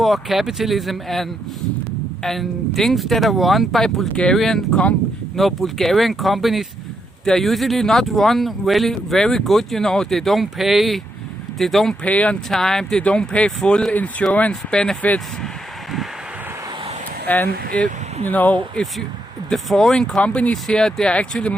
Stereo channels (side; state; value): both; normal; correlation 0.79